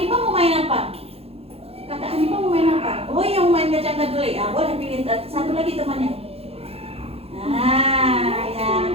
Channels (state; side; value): late; left; 0.29 ms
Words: mau main apa? Kakak Hanifah mau main apa? Oh, yang main kacang kedelai. Boleh pilih satu lagi temannya. Nah, ya.